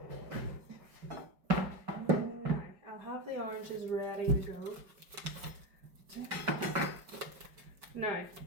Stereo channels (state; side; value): late; left; 5.2 ms